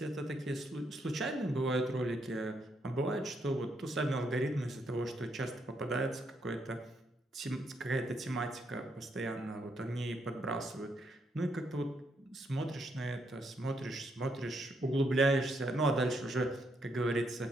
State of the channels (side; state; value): both; normal; correlation 0.76